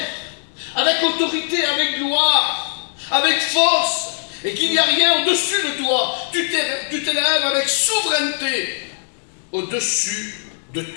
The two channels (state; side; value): silent; right; digital silence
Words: avec autorité, avec gloire, avec force, et qu'il n'y a rien au-dessus de toi. Tu t'élèves avec souveraineté au-dessus de